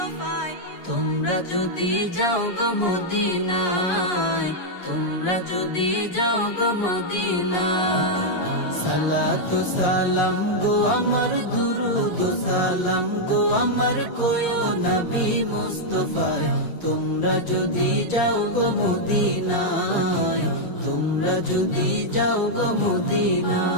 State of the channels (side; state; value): right; late; 8.4 ms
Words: তোমরা যদি যাও গো মদিনায়, তোমরা যদি যাও গো মদিনায়। সালাতু সালাম গো আমার দুরুদ ও সালাম গো আমার কয়ো নবী মুস্তাফায়। তোমরা যদি যাও গো মদিনায়, তোমরা যদি যাও গো